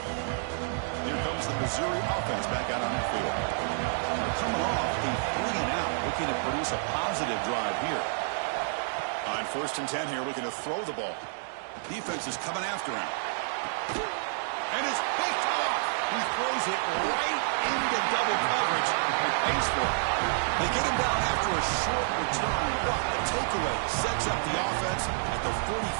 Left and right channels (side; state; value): left; silent; digital silence